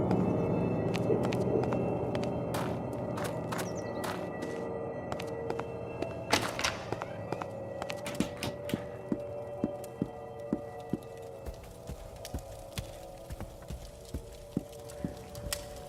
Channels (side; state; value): both; identical; correlation 1.00